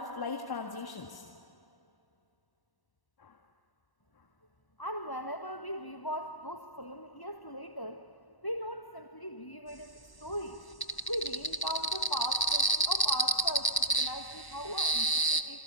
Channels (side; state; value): right; late; 1.1 ms